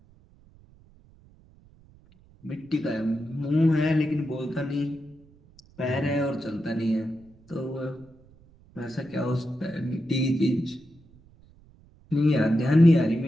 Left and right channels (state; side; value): noise; right; rumble, 27 dB below the sound